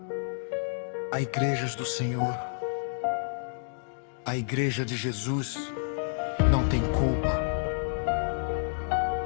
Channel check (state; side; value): silent; right; digital silence